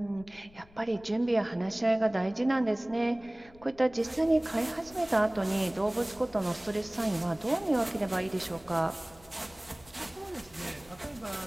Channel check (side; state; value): left; noise; rumble, 24 dB below the sound